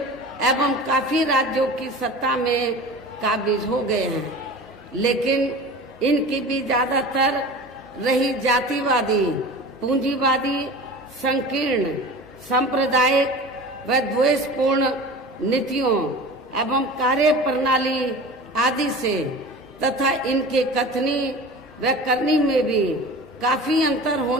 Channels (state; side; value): normal; both; correlation 0.36